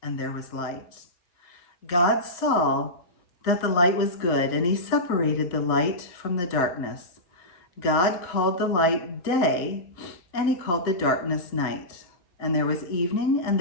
And there was light. God saw that the light was good, and he separated the light from the darkness. God called the light day, and he called the darkness night. And there was evening, and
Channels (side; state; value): right; late; 5.8 ms